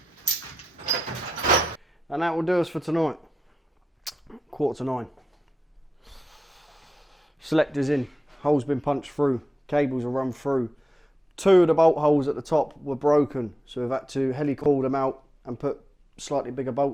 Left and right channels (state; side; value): normal; both; correlation 0.91